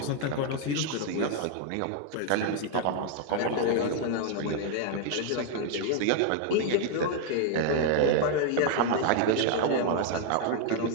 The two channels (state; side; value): different; both; correlation 0.00